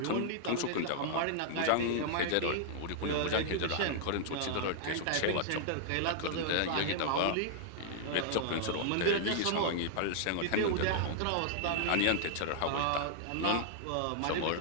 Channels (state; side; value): different; both; correlation -0.01